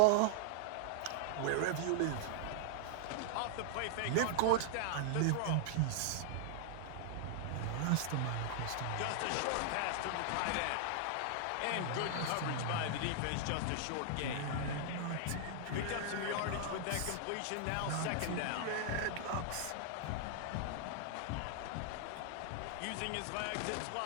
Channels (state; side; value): different; both; correlation -0.01